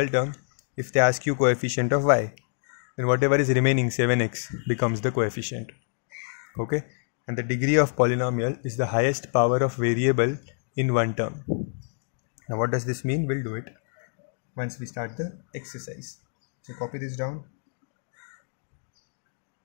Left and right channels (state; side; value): silent; right; digital silence